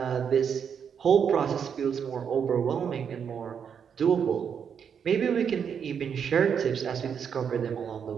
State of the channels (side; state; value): left; quieter; 7.4 dB